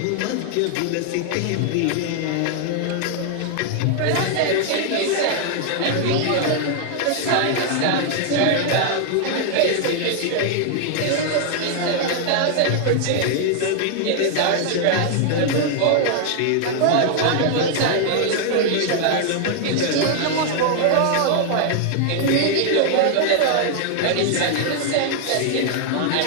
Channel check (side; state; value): both; different; correlation 0.00